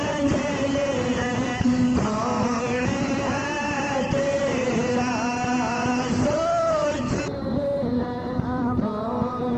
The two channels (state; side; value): identical; both; correlation 1.00